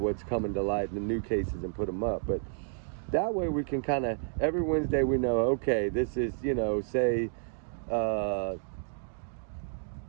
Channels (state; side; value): silent; left; 57 dB below the other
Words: coming to light in the new cases and put them up. But that way we can kind of, every Wednesday we know, okay, this is, you know, say,